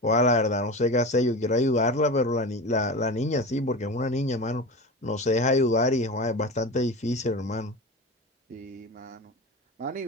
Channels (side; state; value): both; normal; correlation 0.28